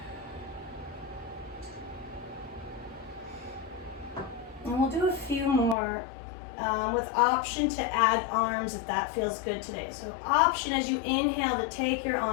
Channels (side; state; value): right; drops out; at 5.8 s